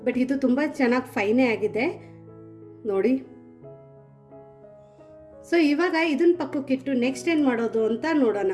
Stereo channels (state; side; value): identical; both; correlation 1.00